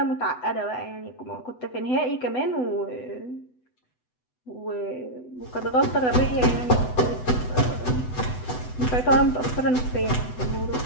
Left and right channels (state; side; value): late; right; 8.0 ms